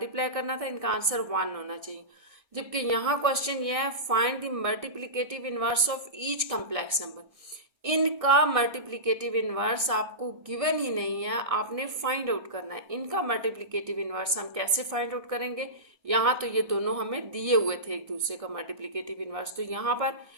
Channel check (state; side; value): late; left; 1.6 ms